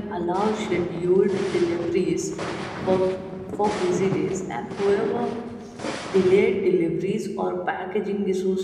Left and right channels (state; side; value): identical; both; correlation 1.00